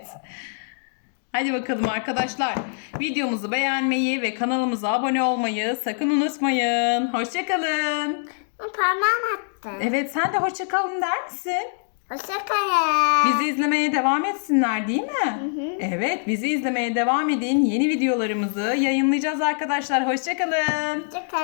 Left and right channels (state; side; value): silent; right; digital silence